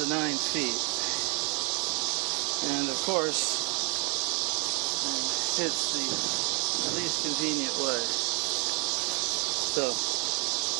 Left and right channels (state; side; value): quieter; left; 33.8 dB